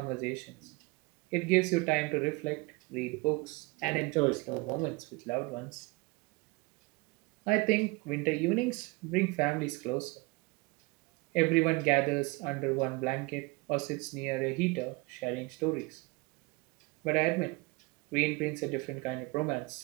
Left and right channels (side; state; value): left; quieter; 25.2 dB